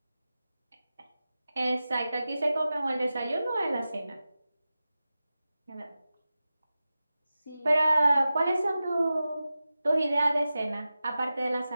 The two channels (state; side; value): inverted; both; correlation -0.94